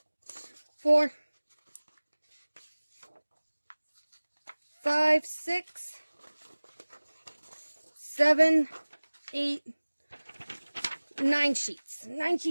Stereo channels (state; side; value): inverted; both; correlation -1.00